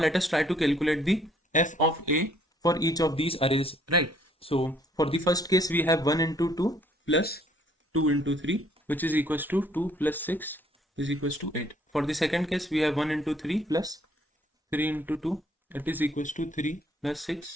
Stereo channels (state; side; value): normal; both; correlation 0.63